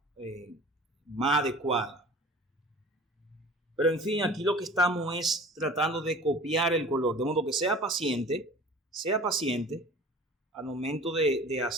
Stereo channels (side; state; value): both; normal; correlation 0.42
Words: más adecuada. Pero en fin, aquí lo que estamos es tratando de copiar el color, de modo que sea paciente al momento de